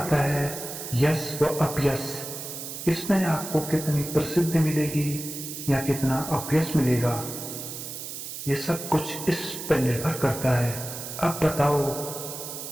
है यश व अपयश। इसमें आपको कितनी प्रसिद्धि मिलेगी या कितना अपयश मिलेगा, ये सब कुछ इस पर निर्भर करता है। अब बताओ,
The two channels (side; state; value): right; noise; hiss, 8 dB below the sound